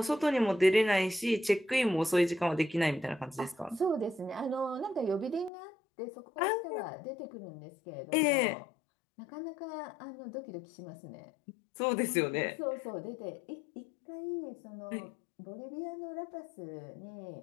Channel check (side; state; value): right; drops out; at 5.5 s